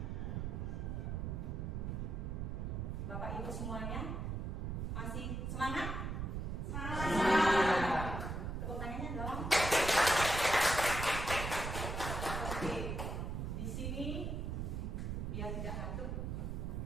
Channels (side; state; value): right; noise; rumble, 3 dB below the sound